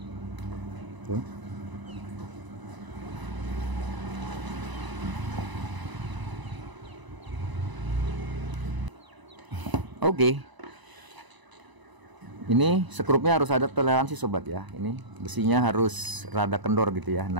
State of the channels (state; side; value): late; left; 1.0 ms